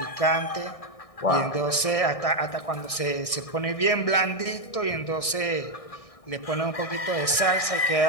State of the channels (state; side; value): late; right; 1.6 ms